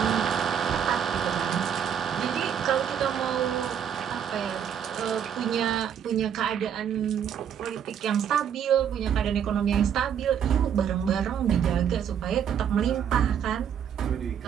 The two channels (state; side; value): quieter; left; 8.6 dB